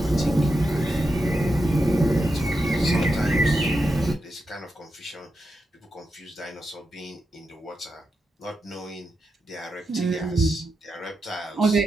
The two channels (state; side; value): normal; both; correlation 0.88